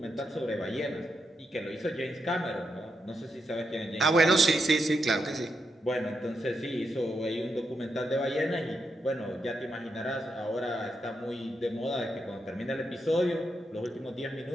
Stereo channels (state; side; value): normal; both; correlation 0.84